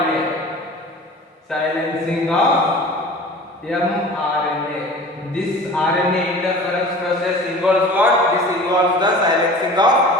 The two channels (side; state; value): both; normal; correlation 0.41